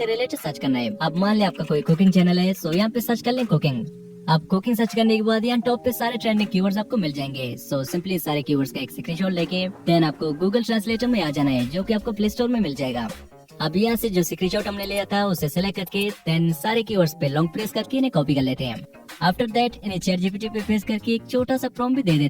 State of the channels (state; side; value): identical; both; correlation 1.00